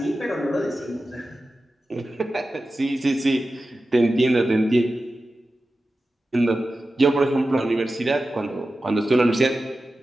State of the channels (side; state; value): both; normal; correlation 0.93